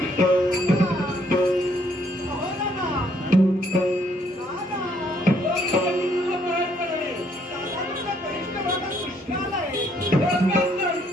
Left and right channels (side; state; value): both; normal; correlation 0.68